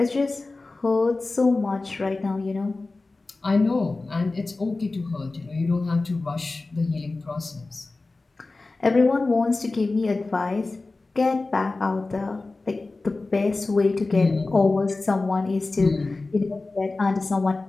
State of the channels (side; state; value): right; quieter; 3.4 dB